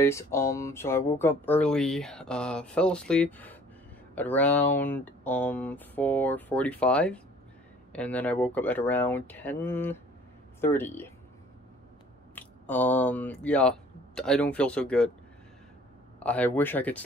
so I woke up early, fell asleep at around, 4:45, and then I woke up at around 10:30. Yeah, I don't feel so good. I wish I could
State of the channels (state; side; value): normal; both; correlation 0.53